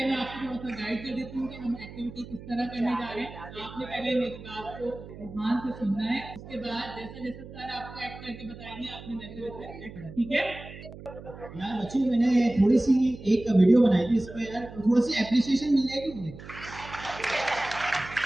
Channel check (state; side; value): noise; right; hum, 15 dB below the sound